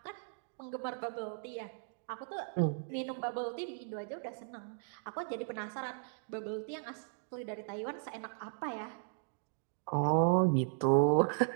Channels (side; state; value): left; silent; digital silence